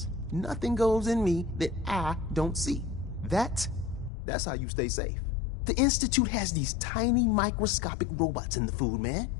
Nothing goes in me that I don't see. That's how you stay safe. The Institute has these tiny microscopic robots in the food, man.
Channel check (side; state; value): right; drops out; at 4.1 s